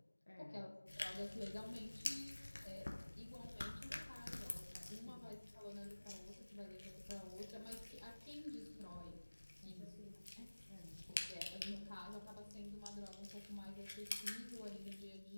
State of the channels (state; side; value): inverted; both; correlation -1.00